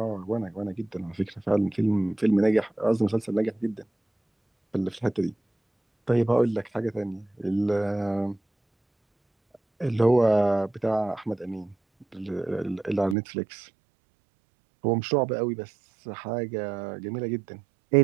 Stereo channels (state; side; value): drops out; left; at 13.2 s